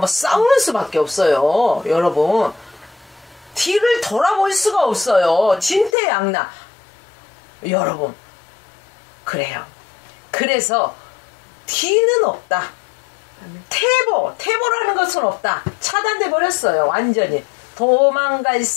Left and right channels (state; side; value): drops out; right; at 5.9 s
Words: 싸우는 수밖에 없어요. 여러분, 뒤를 돌아볼 수가 없어요. 진퇴양난. 여러분, 그래요. 그래서 뒤는 없다. 태보라는 것은 없다. 차단돼 버렸어요. 완전히 도망갈